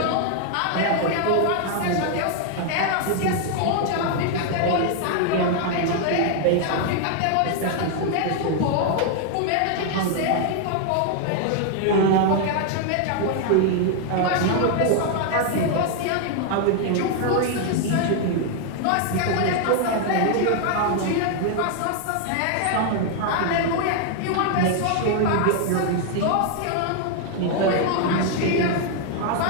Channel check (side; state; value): both; different; correlation 0.00